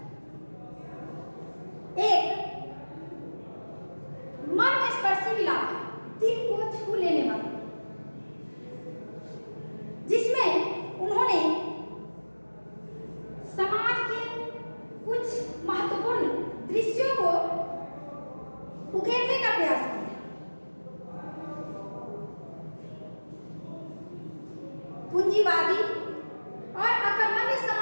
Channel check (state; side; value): inverted; both; correlation -1.00